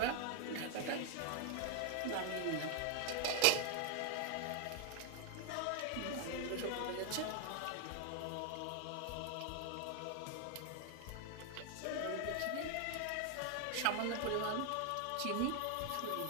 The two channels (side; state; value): both; different; correlation 0.00